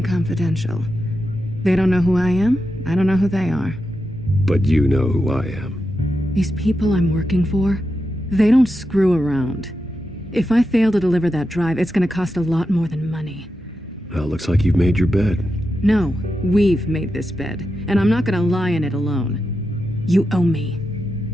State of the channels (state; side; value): normal; both; correlation 0.88